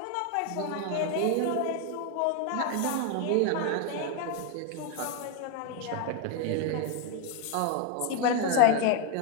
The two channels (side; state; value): both; different; correlation 0.01